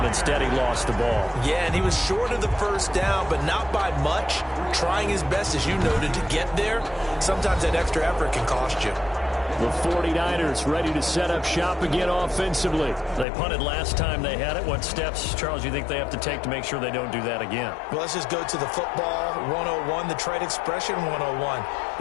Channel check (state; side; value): drops out; right; at 13.2 s